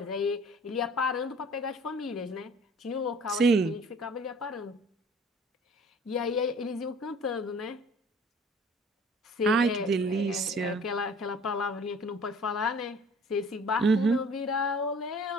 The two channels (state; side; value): normal; both; correlation 0.50